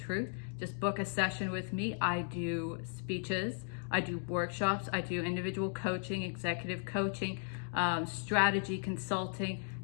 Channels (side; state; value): right; silent; 54 dB below the other